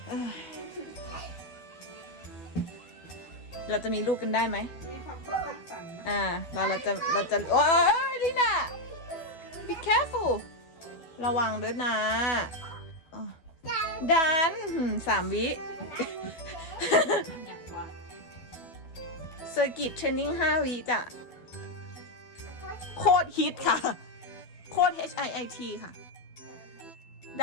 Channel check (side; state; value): right; late; 12 ms